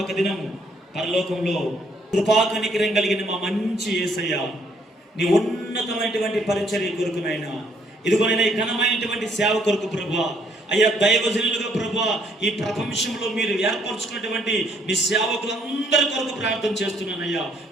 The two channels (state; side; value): normal; both; correlation 0.67